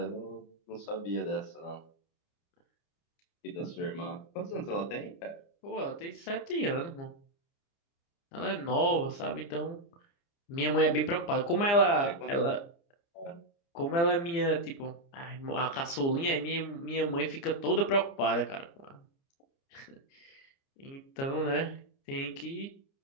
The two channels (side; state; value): right; late; 29 ms